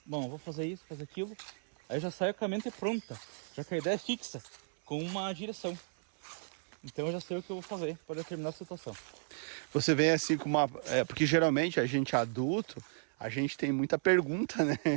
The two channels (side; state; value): left; silent; 55 dB below the other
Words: bom, eu vou fazer isso, fazer aquilo. Aí eu já saio com a mente pronta, já que a ideia é fixa, com uma direção. Então eu já sei o que eu vou fazer para determinada situação. Você vem assim com uma... porque geralmente a gente adulto, a gente tem muita pergunta, né?